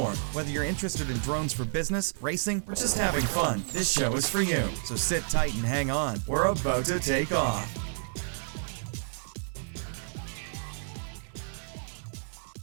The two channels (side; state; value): left; silent; digital silence